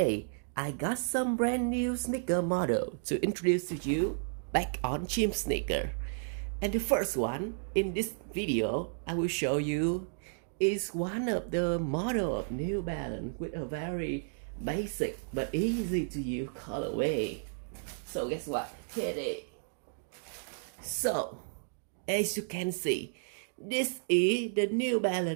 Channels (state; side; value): silent; left; digital silence